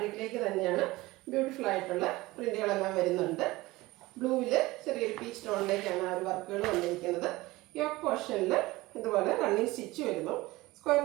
തന്നെയാണ്. ബ്യൂട്ടിഫുൾ ആയിട്ടുള്ള പ്രിന്റുകളെല്ലാം വരുന്നുണ്ട്. ബ്ലൂവിൽ ചെറിയൊരു പീച്ച് ടോണിലേക്കാണ് ആ ഒരു വർക്കുകൾ വന്നിരിക്കുന്നത്. യോക്ക് പോർഷനിൽ ഇതുപോലെ റണ്ണിങ് സ്റ്റിച്ച് വരുന്നു. സ്ക്വയർ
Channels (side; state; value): left; quieter; 19.7 dB